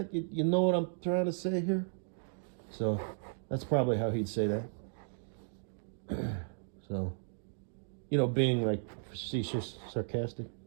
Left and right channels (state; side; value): silent; left; digital silence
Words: You know what I'm trying to say here? So that's probably how he'd say that. So, you know, being like facetious, sarcastic.